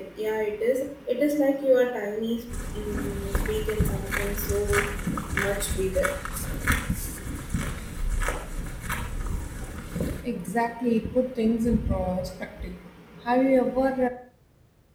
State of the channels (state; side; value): identical; both; correlation 1.00